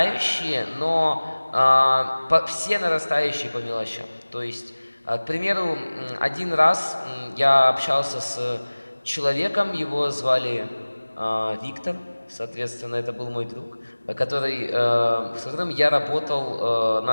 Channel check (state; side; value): inverted; both; correlation -1.00